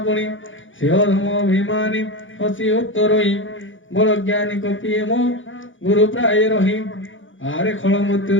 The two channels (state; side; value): late; right; 0.57 ms